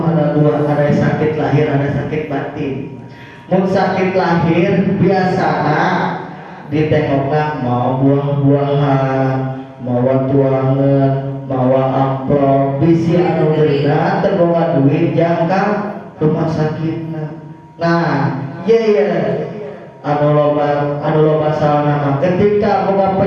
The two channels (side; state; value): both; identical; correlation 1.00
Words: ada dua, ada sakit lahir, ada sakit batin. Mun sakit lahir biasana ditengokna mau buah-buahan, mau tuangan, mau amplop, bisi anu deuna teu boga duit jangka rumah sakitna. Nah, iya anu loba salana ketika boga